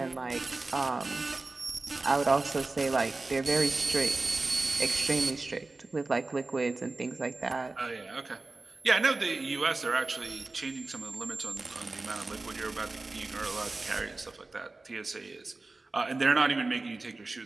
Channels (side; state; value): left; quieter; 3.3 dB